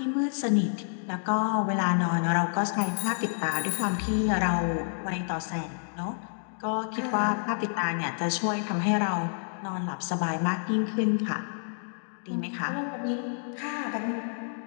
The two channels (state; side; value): silent; right; digital silence